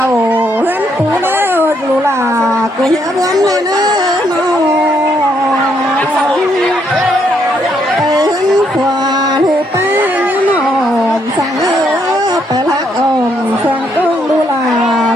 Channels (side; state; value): both; normal; correlation 0.73